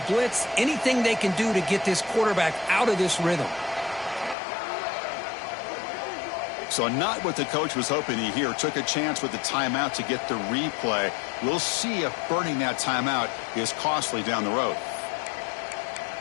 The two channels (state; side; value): drops out; right; at 4.4 s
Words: blitz, anything they can do to get this quarterback out of this rhythm. So not what the coach was hoping to hear. Took a chance with the timeout to get the replay. We'll see if burning that timeout is costly down the road.